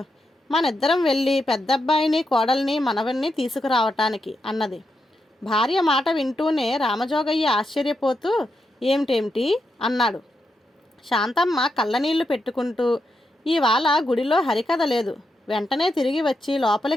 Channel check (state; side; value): normal; both; correlation 0.84